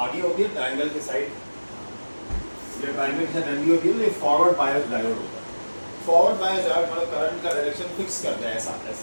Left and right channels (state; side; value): inverted; both; correlation -1.00